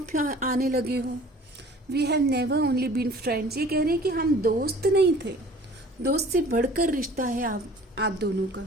आने लगे हो। We have never only been friends. ये कह रहे हैं कि हम दोस्त नहीं थे, दोस्त से बढ़कर रिश्ता है आप दोनों का।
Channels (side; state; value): both; normal; correlation 0.48